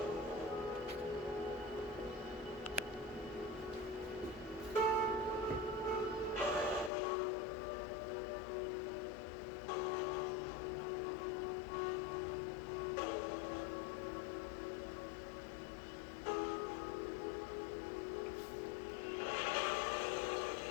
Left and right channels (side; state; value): right; drops out; at 6.9 s